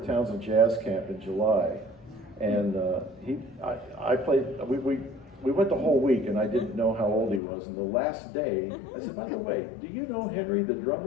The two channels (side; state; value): right; drops out; at 7.4 s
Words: Townsend Jazz Camp in July, and I played. We went the whole week, and I didn't know how old he was. And the last day, I said, by the way, do you know Henry, the